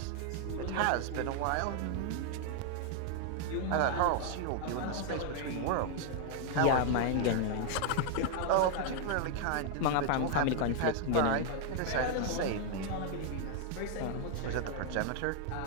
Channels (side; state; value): both; different; correlation 0.00